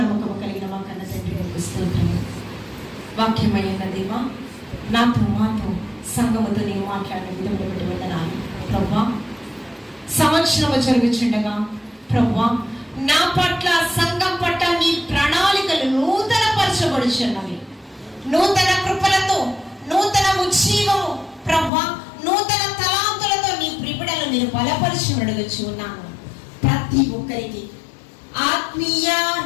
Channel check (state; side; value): drops out; right; at 21.7 s